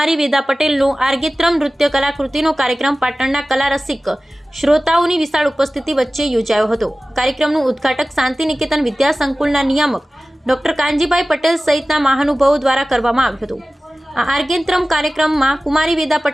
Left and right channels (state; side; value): normal; both; correlation 0.97